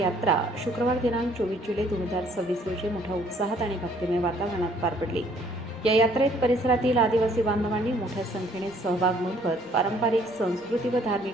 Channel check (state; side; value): normal; both; correlation 0.61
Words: शुक्रवार दिनांक 24 जुलै 2026 रोजी मोठ्या उत्साहात आणि भक्तिमय वातावरणात पार पडली। या यात्रेत परिसरातील आदिवासी बांधवांनी मोठ्या संख्येने सहभाग नोंदवत पारंपरिक संस्कृती व